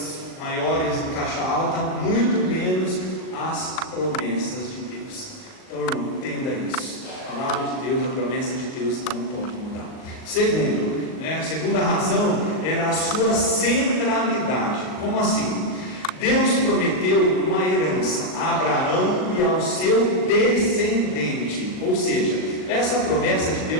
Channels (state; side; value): late; right; 39 ms